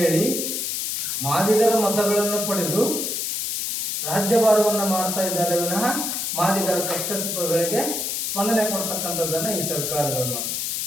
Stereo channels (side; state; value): left; noise; hiss, 1 dB below the sound